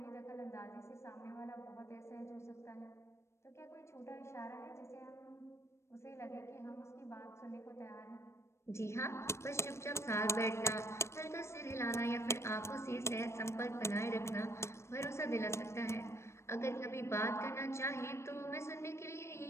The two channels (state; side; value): late; right; 0.13 ms